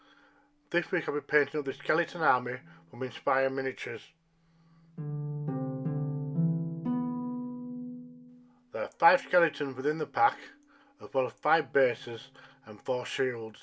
This week I'll be painting up the skeleton army from Inspire Miniatures. There are 5 skeletons within the pack, as well as 5 bases and 4 shields.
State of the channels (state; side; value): identical; both; correlation 1.00